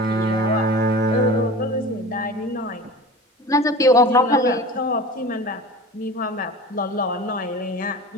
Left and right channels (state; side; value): normal; both; correlation 0.36